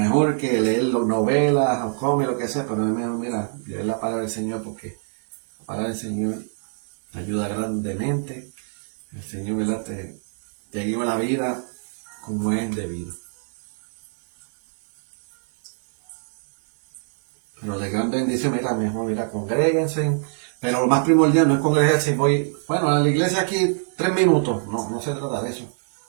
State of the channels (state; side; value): silent; left; 63 dB below the other